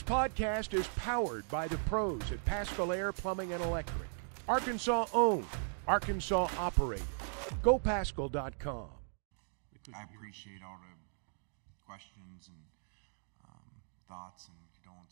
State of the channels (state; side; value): silent; left; digital silence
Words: podcast is powered by the pros at Paschal Air Plumbing and Electric. Arkansas owned, Arkansas operated. GoPaschal.com. I appreciate all the questions and thoughts and